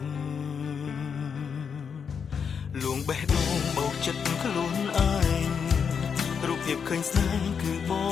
់លួងបេះដូងបោកចិត្តខ្លួនឯងរូបភាពឃើញស្នេហ៍គឺប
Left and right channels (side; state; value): right; quieter; 6.6 dB